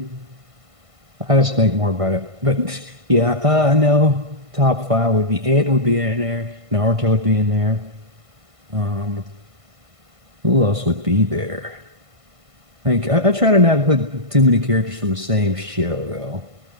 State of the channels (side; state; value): left; late; 1.5 ms